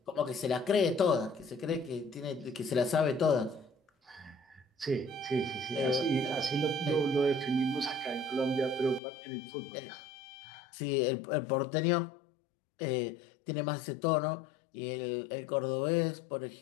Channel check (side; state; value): right; drops out; at 9.0 s